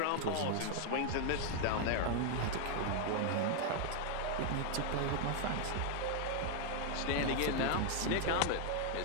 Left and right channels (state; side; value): different; both; correlation 0.00